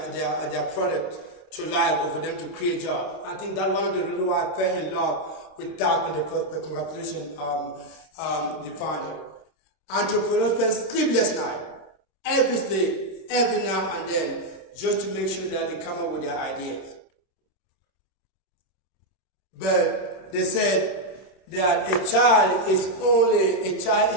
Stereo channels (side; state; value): right; late; 27 ms